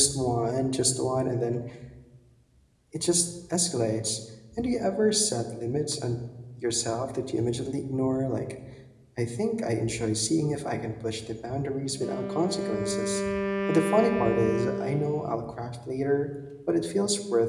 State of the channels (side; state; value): both; identical; correlation 1.00